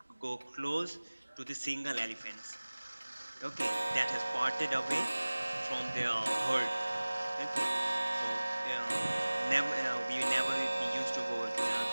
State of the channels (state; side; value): inverted; both; correlation -1.00